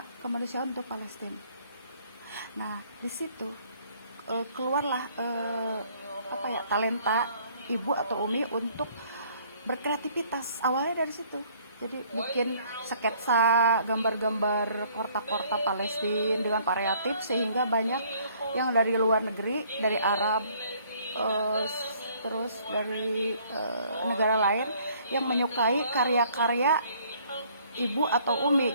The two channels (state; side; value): inverted; both; correlation -0.60